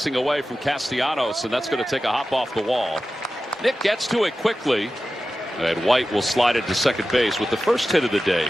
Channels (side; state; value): both; normal; correlation 0.94